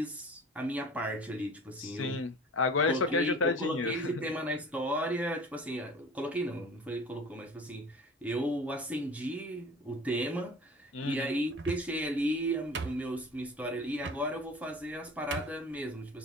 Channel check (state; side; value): normal; both; correlation 0.42